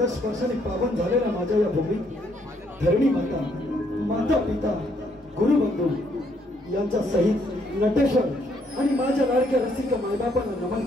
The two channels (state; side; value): normal; both; correlation 0.70